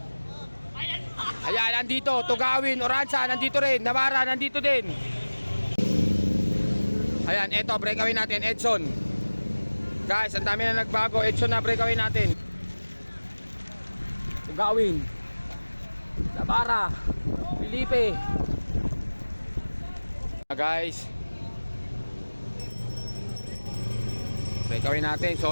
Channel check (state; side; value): inverted; both; correlation -1.00